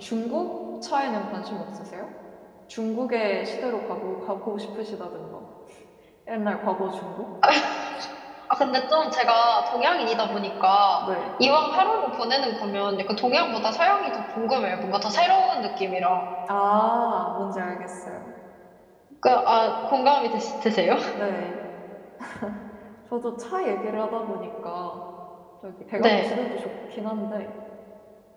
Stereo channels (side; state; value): both; identical; correlation 1.00